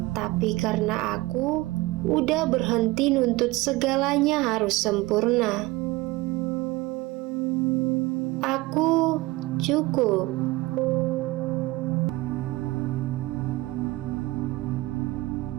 tapi karena aku udah berhenti nuntut segalanya harus sempurna. Aku cukup.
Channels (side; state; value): left; quieter; 20.4 dB